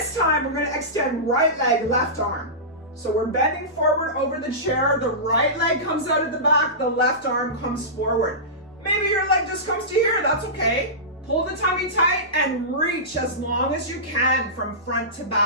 time we're going to extend right leg, left arm. So we're bending forward over the chair. The right leg comes out of the back. The left arm comes forward. Maybe your leg just comes to here. That's okay. Pull the tummy tight and reach as long as you can from front to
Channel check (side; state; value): both; normal; correlation -0.19